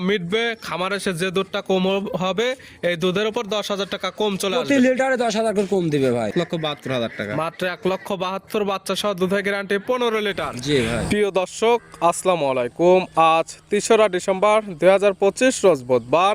মিটবে, খামারে এসে যে দুধটা কম হবে, এই দুধের উপর 10,000 টাকা কম চলে প্রতি আসবে। লিটারে 10,000 করে কম দিবে ভাই। 1,72,000 টাকা। মাত্র 1,72,000 বাচ্চা সহ দুধের গ্যারান্টি 15 লিটার। জি ভাই। প্রিয় দর্শক, আসসালামু আলাইকুম। আজ 3রা ডিসেম্বর 2025 রোজ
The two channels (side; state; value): both; identical; correlation 1.00